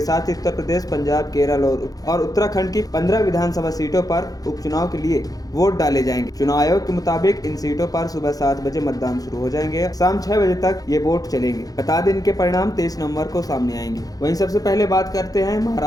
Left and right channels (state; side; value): late; right; 0.18 ms